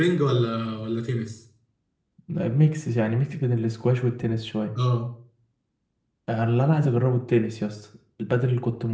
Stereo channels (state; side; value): identical; both; correlation 1.00